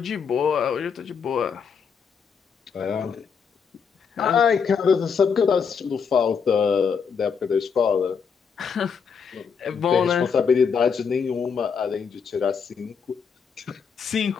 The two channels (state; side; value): quieter; right; 6.3 dB